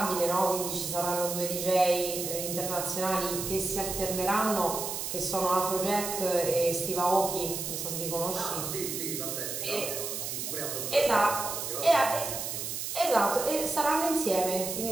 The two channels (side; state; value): right; noise; hiss, 4 dB below the sound